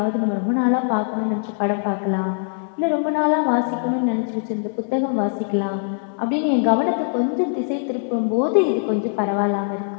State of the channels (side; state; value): right; silent; digital silence